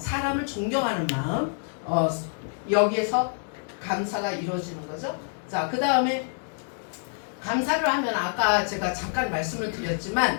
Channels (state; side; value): silent; right; 60 dB below the other